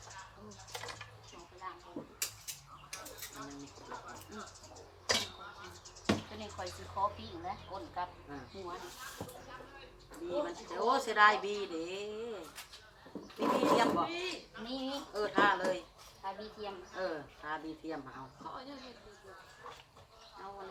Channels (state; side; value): identical; both; correlation 1.00